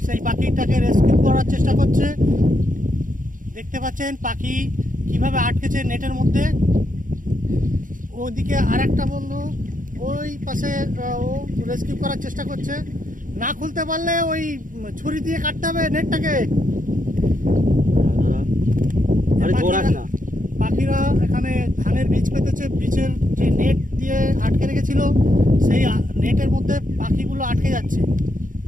সেই পাখিটাকে রেস্কিউ করার চেষ্টা করছে। দেখতে পাচ্ছেন পাখি কিভাবে আটকেছে নেটের মধ্যে। ওদিকে আর একটা বন্ধু ওই পাশে ও রেস্কিউ করার চেষ্টা করছে। না খুলতে পারলে ওই ছুরি দিয়ে কাটতে হবে নেটটাকে। পাখিরা এখানে ধানের বীজ পেতেছে, বীজের যে নেট দিয়ে আটকে রেখেছিল সেই নেটের মধ্যে পাখিগুলো আটকে যাচ্ছে।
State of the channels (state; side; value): late; left; 0.39 ms